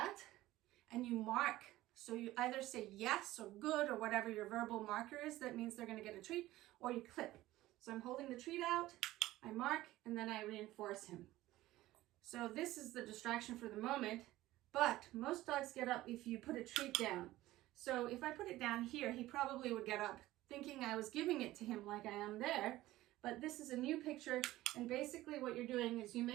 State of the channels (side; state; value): left; quieter; 16.5 dB